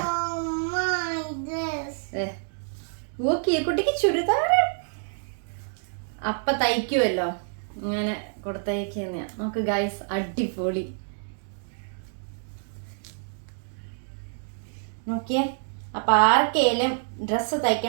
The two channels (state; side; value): silent; left; digital silence